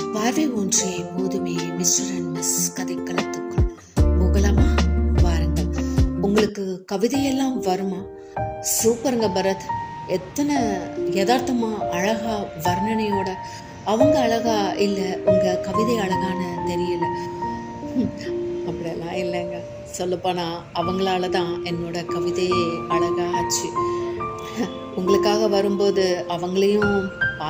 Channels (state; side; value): identical; both; correlation 1.00